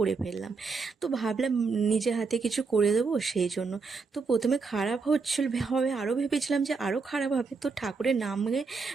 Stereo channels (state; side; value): quieter; left; 4.6 dB